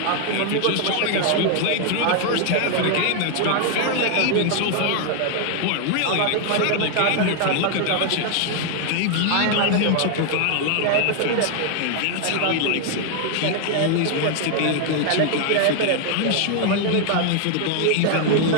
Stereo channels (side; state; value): both; different; correlation 0.00